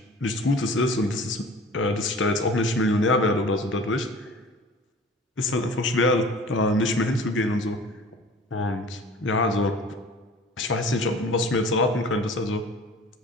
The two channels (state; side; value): normal; both; correlation 0.44